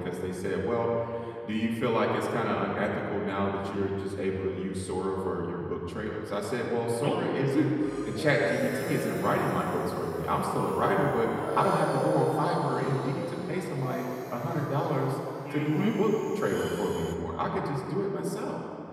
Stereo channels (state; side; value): identical; both; correlation 1.00